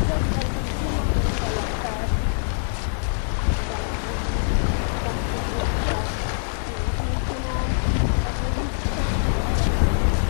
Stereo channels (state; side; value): silent; right; digital silence